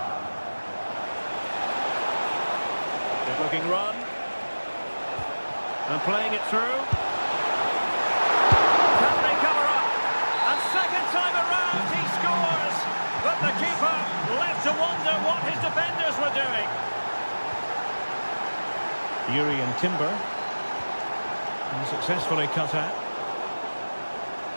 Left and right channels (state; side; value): inverted; both; correlation -1.00